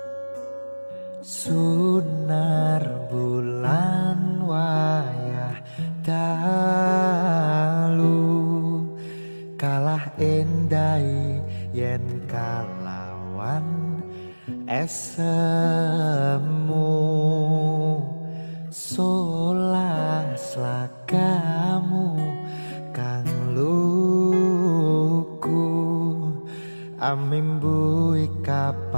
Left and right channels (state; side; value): inverted; both; correlation -1.00